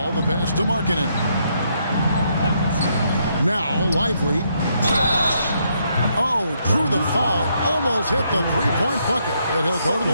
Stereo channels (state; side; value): inverted; both; correlation -0.75